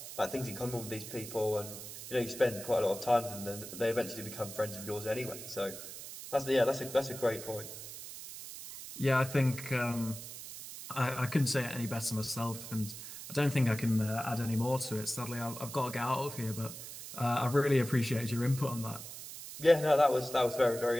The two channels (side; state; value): right; noise; hiss, 11 dB below the sound